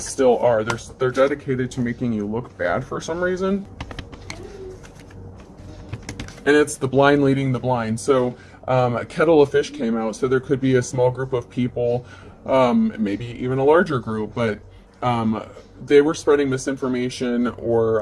are. They're dedicated to making you look bad for some reason. And it's the blind leading the blind. So a kettle of fish came out, so there could be a small group of people, maybe even a larger group, but they were spreading misinformation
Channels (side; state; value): both; identical; correlation 1.00